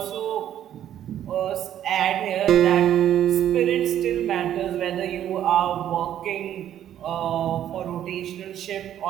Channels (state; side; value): quieter; left; 10.9 dB